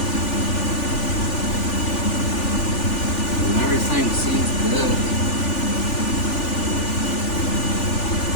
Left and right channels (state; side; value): late; right; 3.4 ms